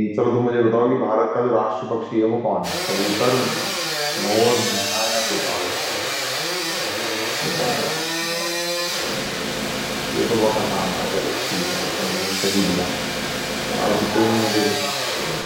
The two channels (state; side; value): identical; both; correlation 1.00